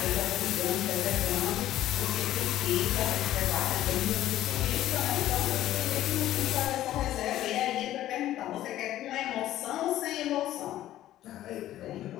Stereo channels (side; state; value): right; quieter; 13.5 dB